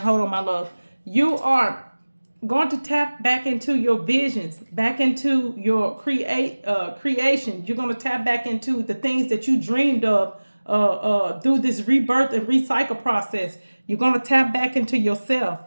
Hold on, my love. You are going to tap back into your visions, back into your creation. You're going to tap back into the things that you dreamed of through this rebirth and recycle process. You're going to tap back into yourself,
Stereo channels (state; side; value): inverted; both; correlation -1.00